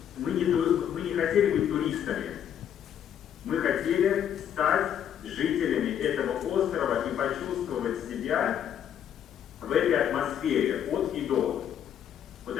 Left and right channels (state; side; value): quieter; right; 9.5 dB